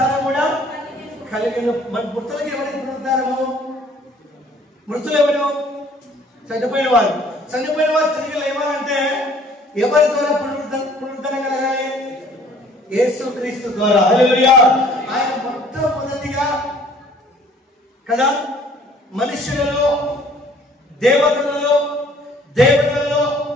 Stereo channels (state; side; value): normal; both; correlation 0.56